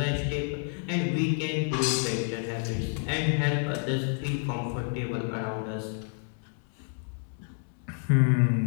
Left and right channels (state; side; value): silent; right; 58 dB below the other